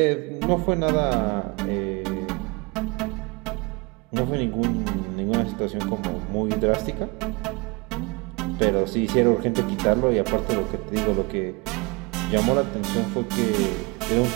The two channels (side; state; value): left; quieter; 27.1 dB